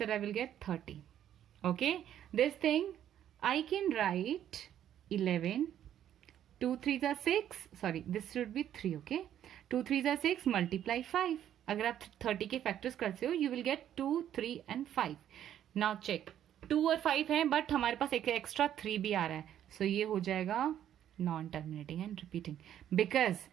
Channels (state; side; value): quieter; left; 10.7 dB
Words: I will get 30. Okay, this thing I can write 11. 2 3s are 6. Sorry, this should be 3. Okay, 2 3s are 6 multiply 5. अगर आप 30 के factors करते हो, you will get 2 3 and 5. Now check, 2 और 5 है but हमारे पास एक extra 3 भी आ रहा है. सो ये हो जाएगा non terminating and repeating because